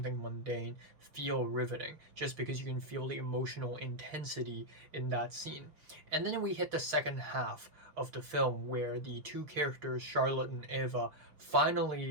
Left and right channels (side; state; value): left; late; 6.4 ms